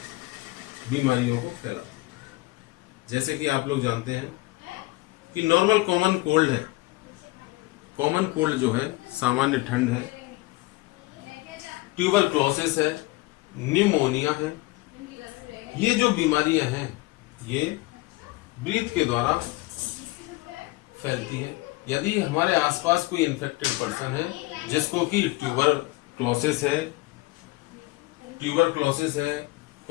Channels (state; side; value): quieter; right; 21.4 dB